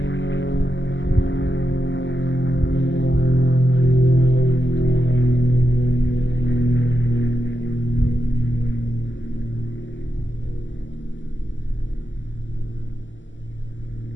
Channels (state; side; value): late; right; 0.54 ms